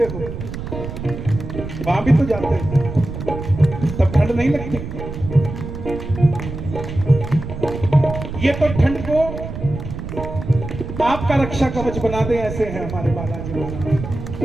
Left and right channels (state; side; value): noise; right; rumble, 8 dB below the sound